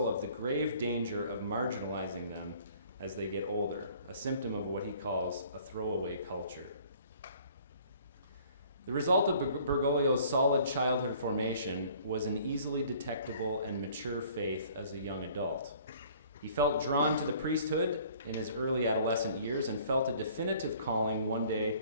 of the grave danger of marginalizing them as they get older, a symptom of what he calls a throwaway culture. The result of Bergoglio's solid childhood formation was an easily detectable and mature faith as a young adult. He felt drawn to the priesthood in his early adolescent years and felt a definitive calling one day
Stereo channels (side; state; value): both; inverted; correlation -0.54